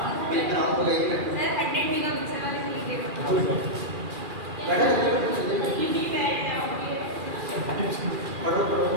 मैं कराऊं तो यही बैठो सर। 100 मेगापिक्सल वाले से लीजिए, बैठो पढ़ो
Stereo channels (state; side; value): late; left; 2.4 ms